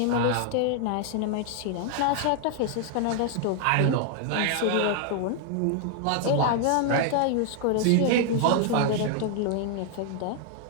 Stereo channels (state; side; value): different; both; correlation 0.00